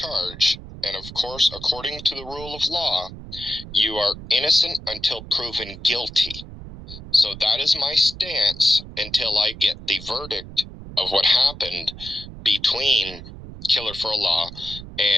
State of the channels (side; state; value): right; noise; rumble, 13 dB below the sound